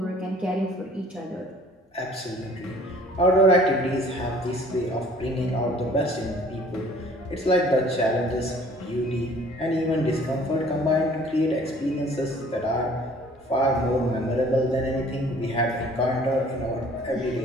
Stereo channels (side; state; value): both; normal; correlation 0.53